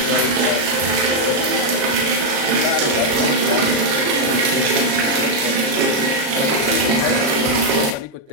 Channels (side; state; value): left; late; 36 ms